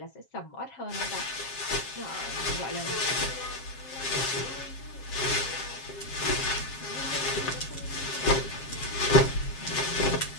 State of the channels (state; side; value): late; right; 7.4 ms